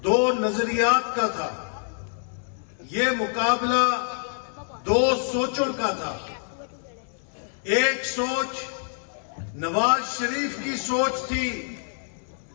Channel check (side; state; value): right; silent; 61 dB below the other